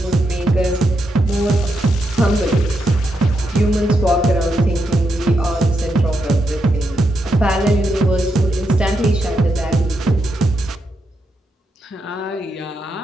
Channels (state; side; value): normal; both; correlation 0.83